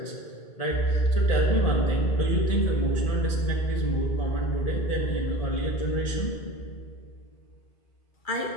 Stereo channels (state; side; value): late; right; 1.8 ms